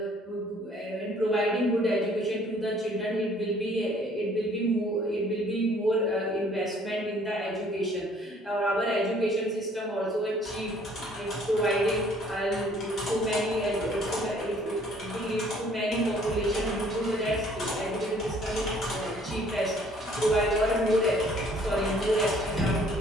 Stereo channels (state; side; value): normal; both; correlation 0.59